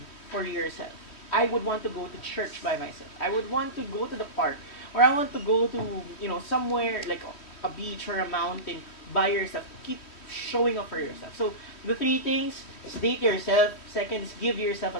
for yourself. I would want to go to church by myself. I would want to go to the park. Or I want to go to, somewhere like a beach or a mountain by yourself. Keep showing up for yourself. So, the 3 things is date yourself. Second is give yourself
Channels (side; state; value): right; late; 3.1 ms